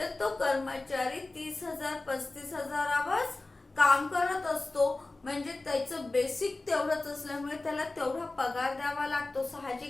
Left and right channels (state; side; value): quieter; right; 3.1 dB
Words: तो कर्मचारी 30,000, 35,000 काम करत असतो. म्हणजे त्याचं बेसिक तेवढंच असल्यामुळे त्याला तेवढा पगार द्यावा लागतो.